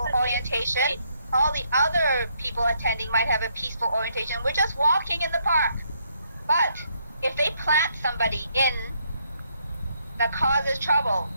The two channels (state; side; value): inverted; both; correlation -0.73